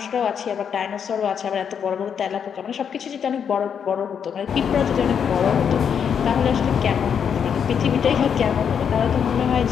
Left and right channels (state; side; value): quieter; right; 7.5 dB